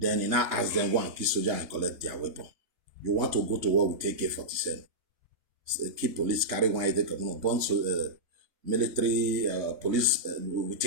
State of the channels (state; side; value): late; left; 2.9 ms